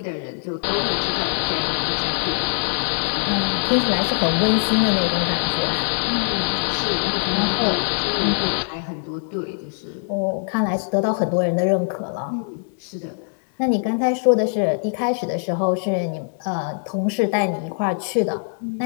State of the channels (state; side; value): silent; right; digital silence